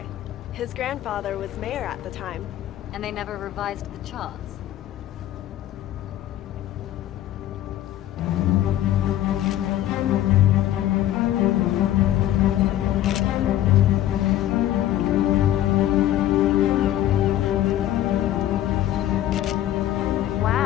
His grandfather was mayor at the time. And they never revised the charts.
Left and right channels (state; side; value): quieter; right; 13.0 dB